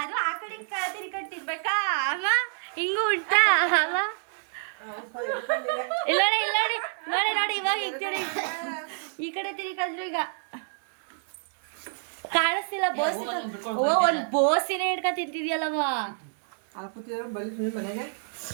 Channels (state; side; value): silent; left; digital silence